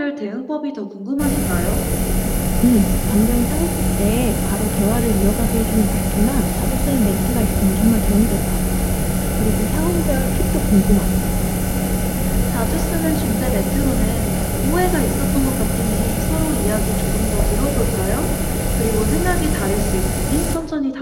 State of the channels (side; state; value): both; identical; correlation 1.00